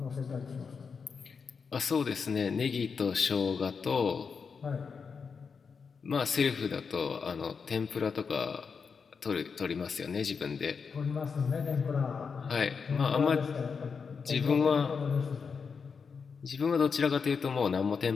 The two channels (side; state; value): right; quieter; 5.6 dB